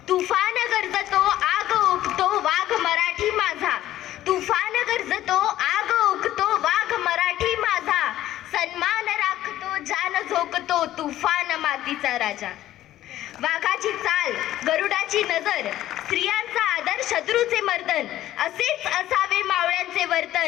तुफान गरजतो आग ओकतो वाघ मराठी माझा, तुफान गरजतो आग ओकतो वाघ मराठी माझा, सन्मान राखतो जान झोकतो तुफान मातीचा राजा. वाघाची चाल गरुडाची नजर, स्त्रियांचा आदर शत्रूचे मर्दन, असेच असावे मावळ्यांचे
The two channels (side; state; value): right; quieter; 13.7 dB